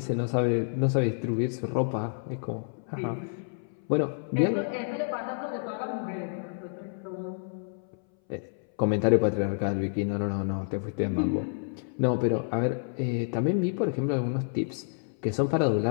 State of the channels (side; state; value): right; silent; 59 dB below the other